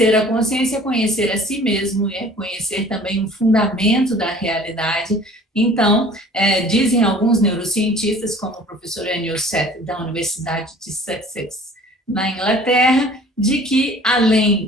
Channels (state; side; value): normal; both; correlation 0.49